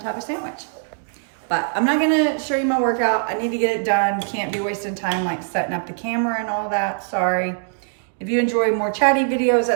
of sandwich. But I'm not gonna show you my workout. I need to get it done. Can't be wasting time like setting up the camera and all that, sorry. If you enjoy more chatty videos,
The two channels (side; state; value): left; silent; digital silence